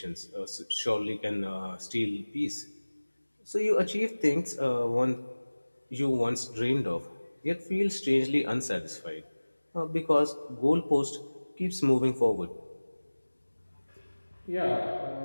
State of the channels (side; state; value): both; inverted; correlation -1.00